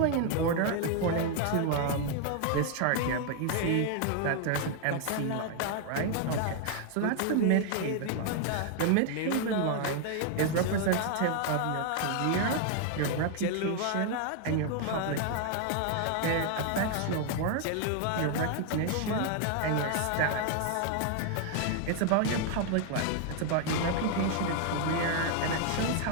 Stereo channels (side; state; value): both; different; correlation 0.00